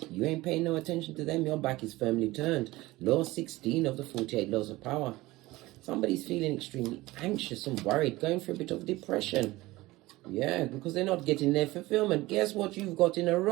ain't paying no attention to them. Your back is firmly turned. Law 16 of the 48 laws of power. Somebody's feeling extremely anxious and worried, going through a bit of depression. Yeah, because they're not getting their fulfillment. Guess what you've got in a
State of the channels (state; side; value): quieter; left; 19.2 dB